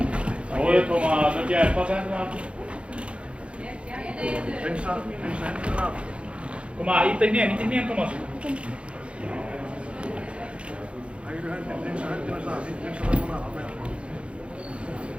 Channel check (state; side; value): late; left; 0.059 ms